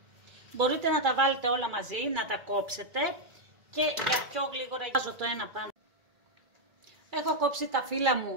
Μπορείτε να τα βάλετε όλα μαζί, να τα κόψετε και για πιο γλίγορα βάζω το ένα πάνω. Έχω κόψει τα φύλλα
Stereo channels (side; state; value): left; late; 2.3 ms